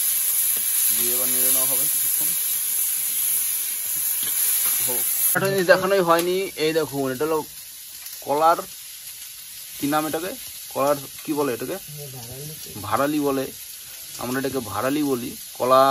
দিয়ে এবার নেড়ে নেওয়া হবে কিছুক্ষণ। একটা জিনিস দেখানোই হয়নি, এই দেখুন, এটা হলো কলার, কি নাম এটাকে, কলার কি বলে এটাকে? ভাড়ালি বলে, আমরা এটাকে ভাড়ালি বলি।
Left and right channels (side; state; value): both; identical; correlation 1.00